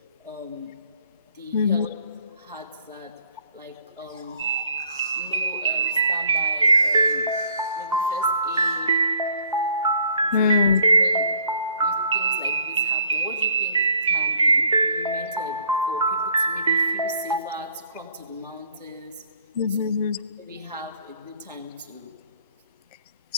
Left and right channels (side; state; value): both; inverted; correlation -0.61